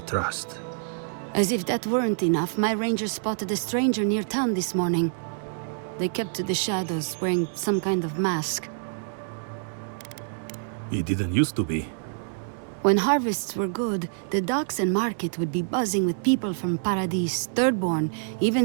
trust. As if that weren't enough, my rangers spotted a stranger near town this morning. They kept to the shadows, wearing some kind of mask. It didn't used to be. When harvests were good, the docks and market would be buzzing with people from Paradis, Thirdborn,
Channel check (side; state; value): left; silent; 61 dB below the other